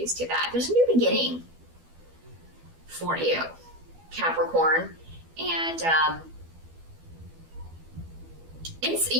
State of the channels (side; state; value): left; late; 12 ms